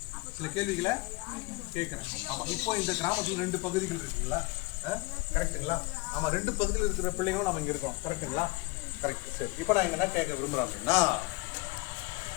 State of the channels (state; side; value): quieter; right; 23.9 dB